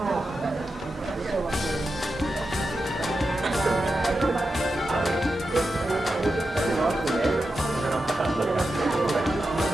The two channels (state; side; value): normal; both; correlation 0.89